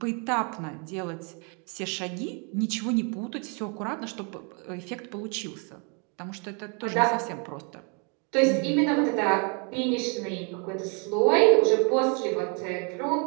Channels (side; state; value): left; quieter; 35.9 dB